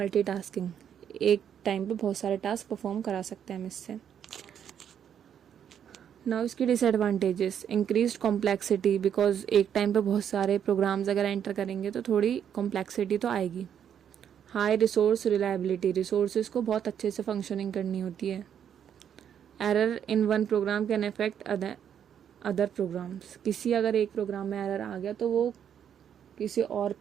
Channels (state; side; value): quieter; left; 8.8 dB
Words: एक टाइम पे बहुत सारे टास्क परफॉर्म करा सकते हैं हम इससे। नाउ इसकी डिसएडवांटेजेस, इंक्रीज्ड कॉम्प्लेक्सिटी, बिकॉज एक टाइम पे बहुत सारे प्रोग्राम्स अगर एंटर करेंगे तो थोड़ी कॉम्प्लेक्सिटी तो आएगी। हाई रिसोर्स रिलायबिलिटी, रिसोर्सेज को बहुत अच्छे से फंक्शनिंग करनी होती है। Error in one program can affect other programs, किसी अगर एक प्रोग्राम में एरर आ गया तो वो किसी और